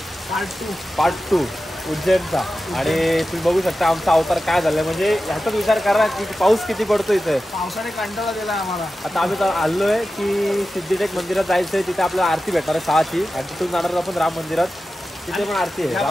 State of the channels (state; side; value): normal; both; correlation 0.93